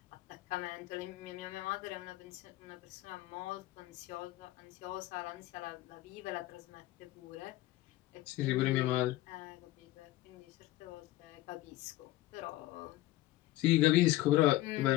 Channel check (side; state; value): right; quieter; 16.5 dB